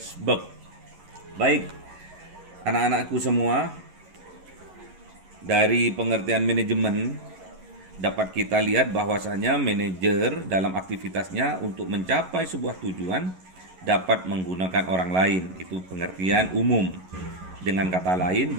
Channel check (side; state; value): left; late; 11 ms